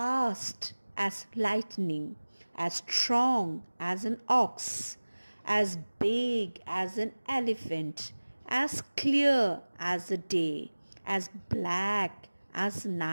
as lightning, as strong as an ox, as big as an elephant, as clear as the day, as black as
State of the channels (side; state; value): both; inverted; correlation -1.00